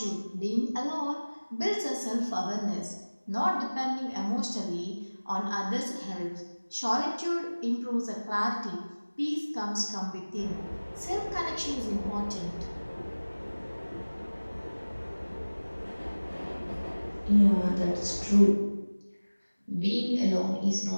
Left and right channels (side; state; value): both; inverted; correlation -1.00